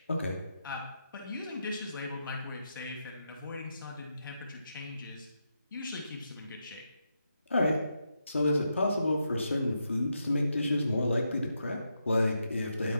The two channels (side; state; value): both; inverted; correlation -0.84